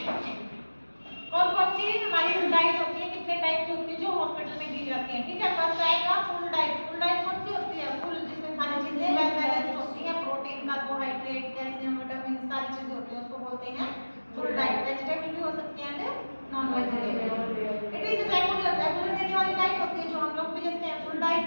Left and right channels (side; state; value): both; inverted; correlation -1.00